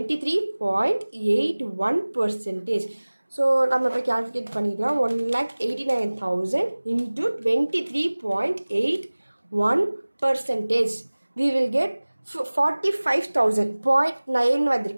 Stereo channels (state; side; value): inverted; both; correlation -1.00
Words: ஸோ நம்ம இப்போ கேல்குலேட் பண்ணிக்கலாம். 1,89,000 இன்ட்டு 23.81%. we will get 45,000.9